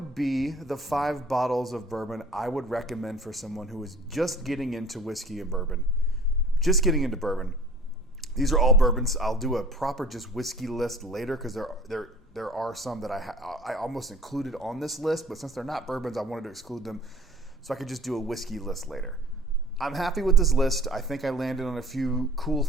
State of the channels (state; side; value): normal; both; correlation 0.46